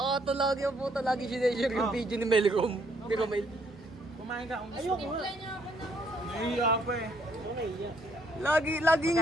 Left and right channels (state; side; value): normal; both; correlation 0.68